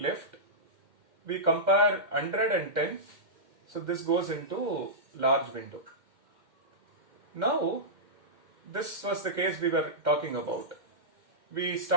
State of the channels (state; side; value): late; left; 2.1 ms